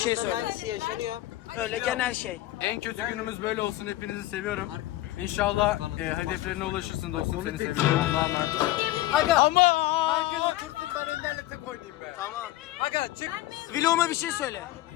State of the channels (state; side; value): quieter; right; 16.2 dB